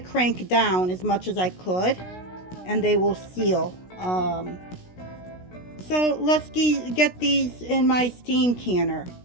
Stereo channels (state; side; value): late; right; 16 ms